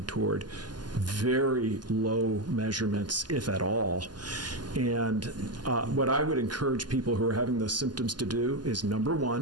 toward very low measurements, if at all. And what I would encourage people who are having those symptoms to do is, number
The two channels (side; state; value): left; late; 0.70 ms